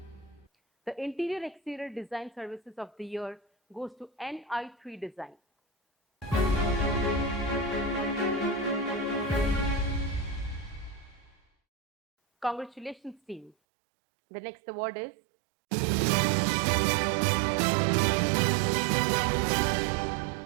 the Interior Exterior Design Services of the Year goes to NI3 Design. Congratulations, team. The next award is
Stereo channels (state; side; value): drops out; left; at 13.6 s